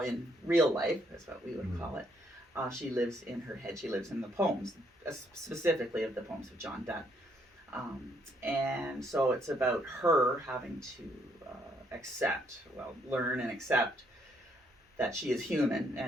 in real life, that's what we would call it. She lives in her head. She lives in the poems, specifically of the poems of John Donne. And so it's about her having to learn and accept that she is human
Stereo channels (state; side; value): normal; both; correlation 0.71